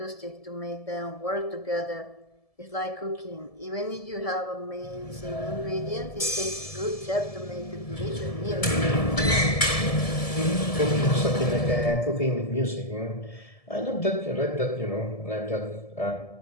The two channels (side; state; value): right; late; 1.7 ms